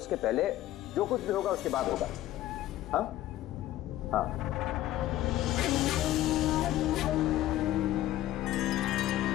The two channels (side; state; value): right; quieter; 14.1 dB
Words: पहले जो कुछ भी होगा उसके बाद होगा। हाँ हाँ।